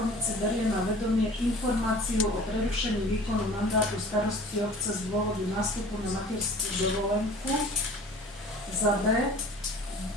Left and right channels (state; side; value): normal; both; correlation 0.45